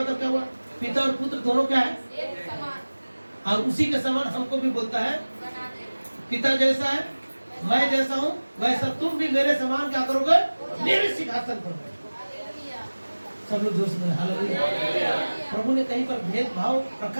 क्या हुआ? पिता और पुत्र दोनों क्या है? और उसी के समान हमको भी बोलता है, पिता जैसा है मैं जैसा हूँ वैसा तुम भी मेरे समान क्या करोगे? मेरे सिंहासन पर बैठोगे। सब लोग जोर से बोले हालेलुया। प्रभु ने कहीं पर भेदभाव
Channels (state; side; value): inverted; both; correlation -1.00